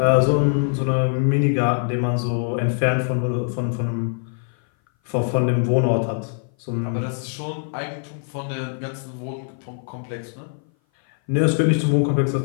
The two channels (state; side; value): silent; right; 58 dB below the other